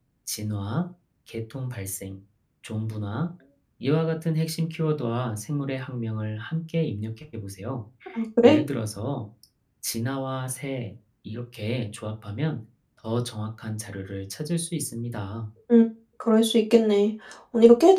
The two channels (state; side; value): identical; both; correlation 1.00